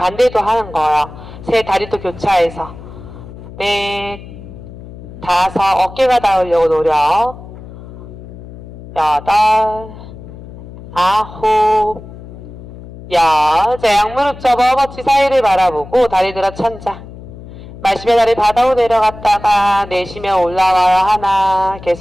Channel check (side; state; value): left; noise; hum, 15 dB below the sound